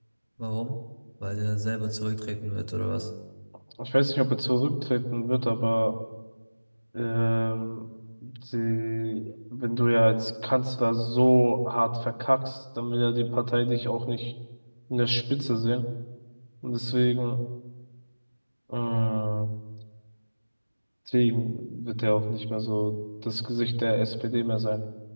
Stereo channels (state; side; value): inverted; both; correlation -1.00